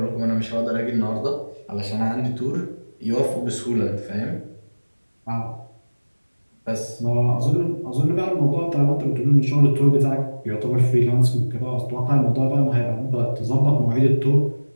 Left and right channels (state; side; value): inverted; both; correlation -1.00